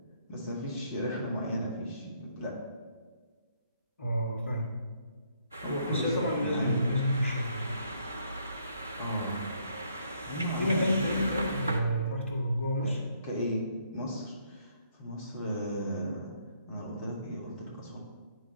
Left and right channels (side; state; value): both; inverted; correlation -0.69